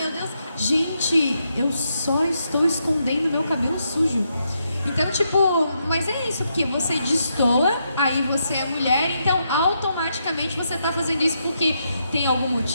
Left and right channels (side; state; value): both; inverted; correlation -0.80